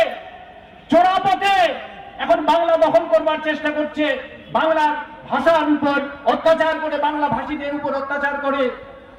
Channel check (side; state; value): both; identical; correlation 1.00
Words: চোরা পথে এখন বাংলা দখল করবার চেষ্টা করছে, বাংলার ভাষার উপর অত্যাচার করে, বাংলা ভাষীদের উপর অত্যাচার করে।